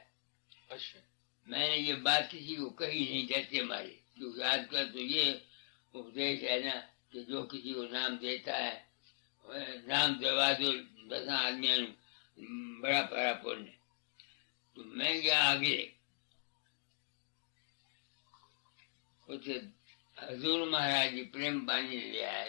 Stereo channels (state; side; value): silent; right; digital silence